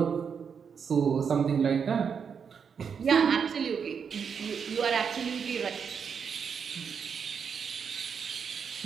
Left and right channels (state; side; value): quieter; left; 6.7 dB